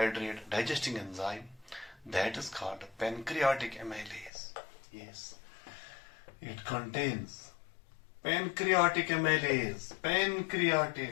digesting enzyme that is called pancreatic amylase. Yes, it contains pancreatic amylase.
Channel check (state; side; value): drops out; right; at 4.3 s